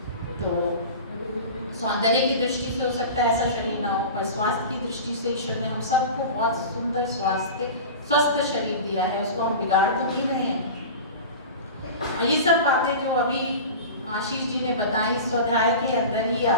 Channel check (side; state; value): both; inverted; correlation -0.32